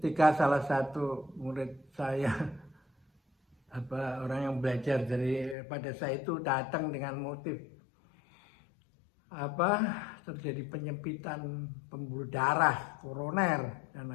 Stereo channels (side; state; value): right; drops out; at 5.6 s